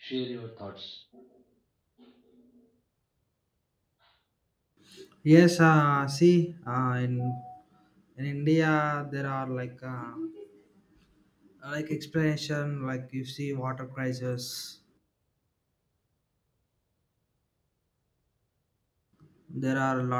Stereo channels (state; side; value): identical; both; correlation 1.00